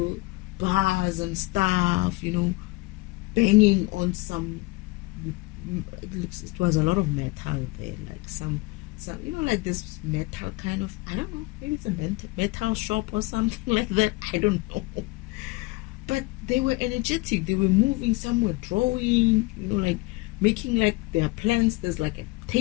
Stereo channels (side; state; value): right; quieter; 22.9 dB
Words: bars and stuff, banging on some, it was a lot of metal there, like some like this metal kind of, I don't know, maybe it's a metal shop or something like that, I don't know. But they were energetic. They were moving. Some were drawing, like making like their plans. There's like a